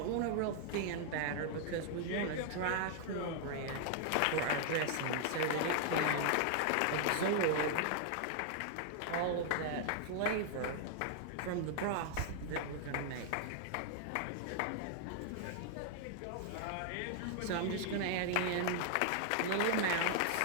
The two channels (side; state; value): both; different; correlation 0.00